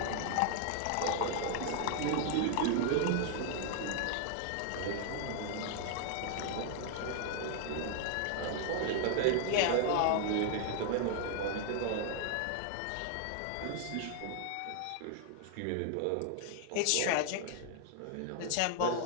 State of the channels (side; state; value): both; different; correlation 0.00